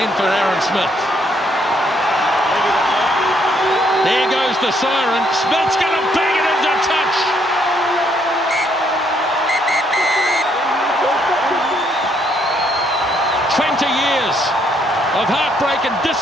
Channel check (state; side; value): normal; both; correlation 0.71